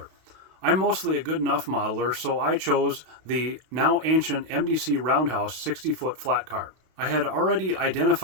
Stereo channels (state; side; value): late; left; 32 ms